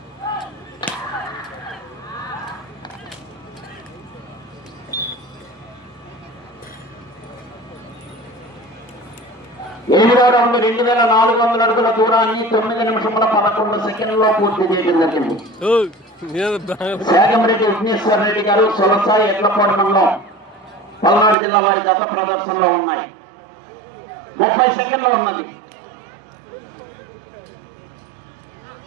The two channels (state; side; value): drops out; left; at 21.4 s